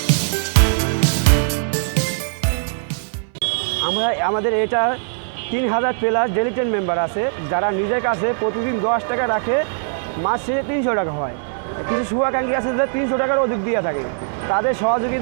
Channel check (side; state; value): left; silent; 62 dB below the other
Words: আমাদের এটা 3000 প্লাস ডেলিটেড মেম্বার আছে, যারা নিজের কাছে প্রতিদিন 10 টাকা রাখে, মাসে 300 টাকা হয়। কিছু শুভাকাঙ্ক্ষী আছে যে 300 টাকার অধিক দিয়ে থাকে, তাদের